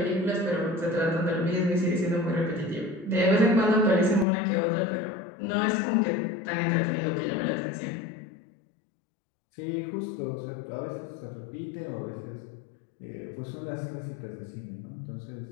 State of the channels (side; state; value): right; drops out; at 4.2 s